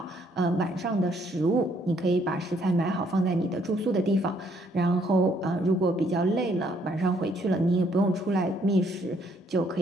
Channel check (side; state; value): both; normal; correlation 0.68